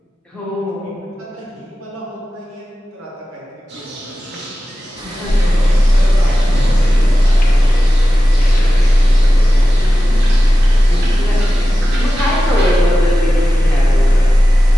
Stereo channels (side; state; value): both; normal; correlation 0.95